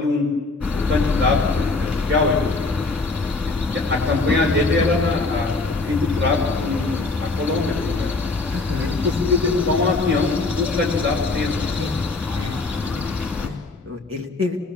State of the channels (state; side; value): quieter; right; 3.5 dB